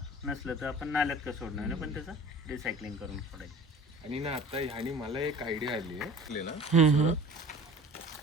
नसलं तर आपण नाल्यात का सोडणार नाही पण त्याचं रिसायकलिंग करून सोडायचं. आणि ना आता ह्यानी मला एक आयडिया आली आहे ना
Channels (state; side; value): normal; both; correlation 0.43